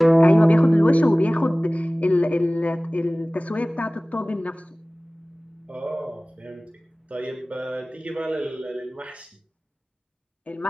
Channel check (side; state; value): both; normal; correlation 0.98